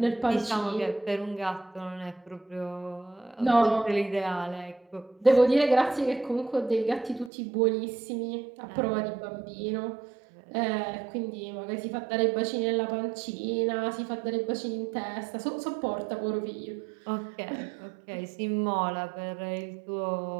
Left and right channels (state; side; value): drops out; left; at 7.3 s